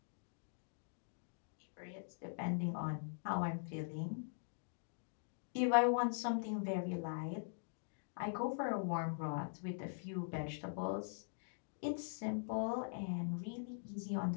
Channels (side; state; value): right; silent; digital silence